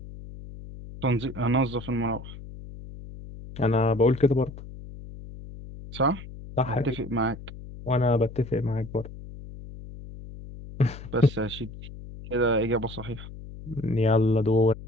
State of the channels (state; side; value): noise; left; hum, 14 dB below the sound